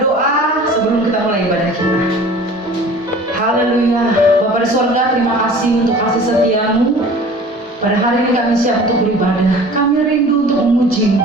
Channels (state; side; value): normal; both; correlation 0.44